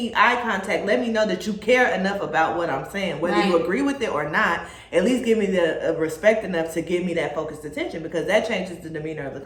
eye contact. Let me know that you care enough about what I'm saying. Whether you agree with it or not, at least give me the respect enough to give me that focused attention, because that changes the demeanor of the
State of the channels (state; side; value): identical; both; correlation 1.00